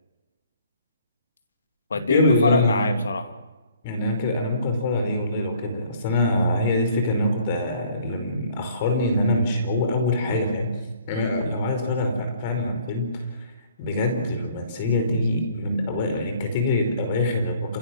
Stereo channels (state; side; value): inverted; both; correlation -0.58